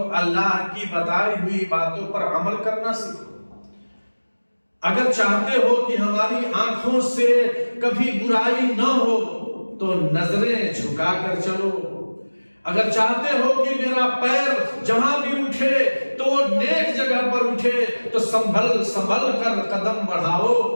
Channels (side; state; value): both; inverted; correlation -1.00